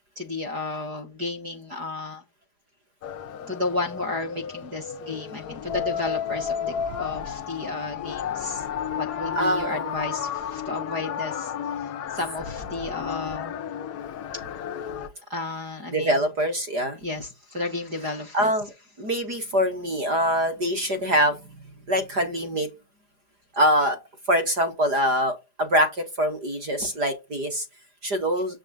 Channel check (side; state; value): left; late; 4.9 ms